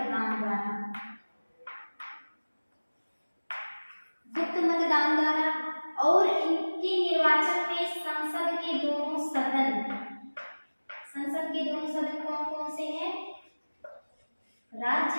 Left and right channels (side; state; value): both; inverted; correlation -1.00